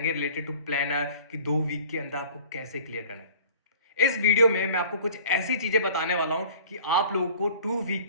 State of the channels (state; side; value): inverted; both; correlation -0.47